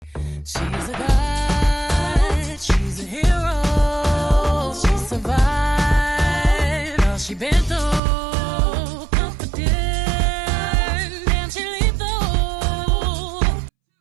She's a god, she's a hero. She survived all she been through. Confident and she lethal.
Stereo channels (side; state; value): left; drops out; at 8.0 s